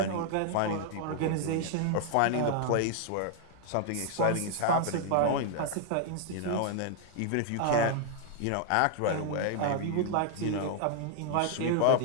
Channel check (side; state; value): both; different; correlation 0.00